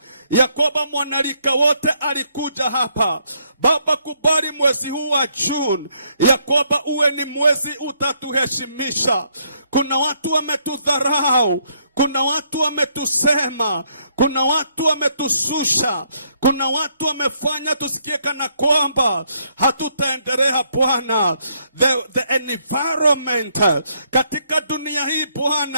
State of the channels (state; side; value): inverted; both; correlation -0.71